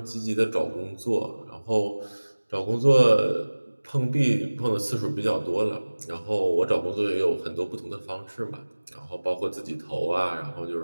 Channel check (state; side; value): inverted; both; correlation -1.00